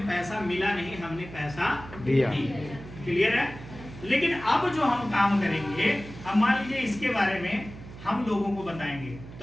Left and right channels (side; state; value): right; noise; hum, 14 dB below the sound